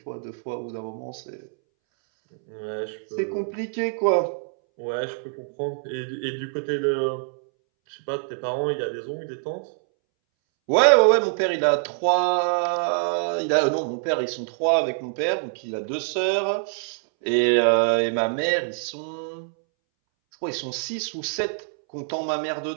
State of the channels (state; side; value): silent; left; 62 dB below the other